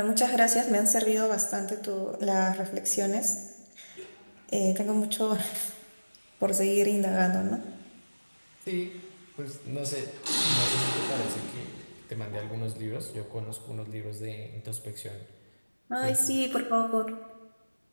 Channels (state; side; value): inverted; both; correlation -1.00